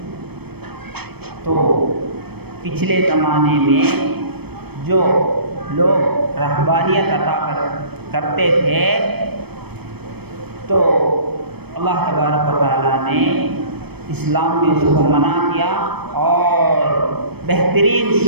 تو پچھلے زمانے میں جو لوگ رہبانیت عطا کرتے تھے تو اللہ تبارک و تعالیٰ نے اسلام میں اس کو منع کیا اور بہترین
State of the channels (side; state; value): left; late; 0.97 ms